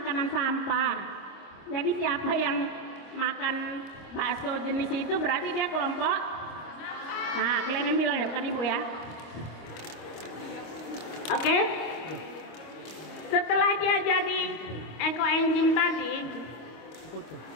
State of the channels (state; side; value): late; right; 26 ms